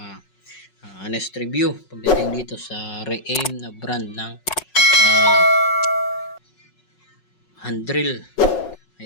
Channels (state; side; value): late; right; 5.4 ms